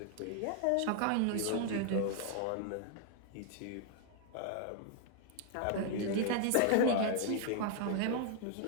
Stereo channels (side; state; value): both; different; correlation 0.00